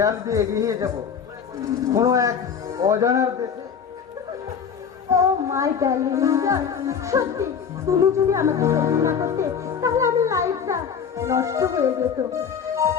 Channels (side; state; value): right; quieter; 6.9 dB